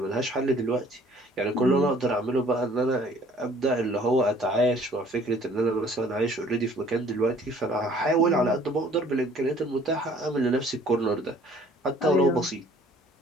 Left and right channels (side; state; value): both; normal; correlation 0.56